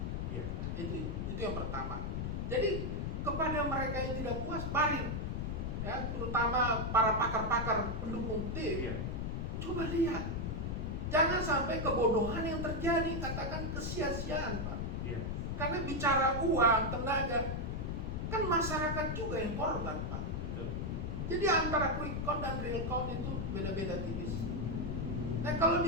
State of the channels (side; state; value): left; noise; rumble, 2 dB below the sound